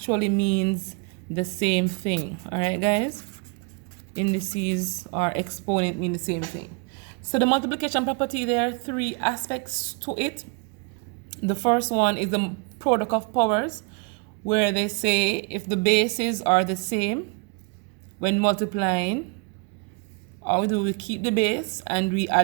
means the same thing. All right, guys? Indices or exponent mean the same thing. So the multiplication property, there are three aspects to it. The first one is the product of powers, where they say if the bases are the same, when multiplying, all we do, we keep the base and we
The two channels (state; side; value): quieter; left; 32.8 dB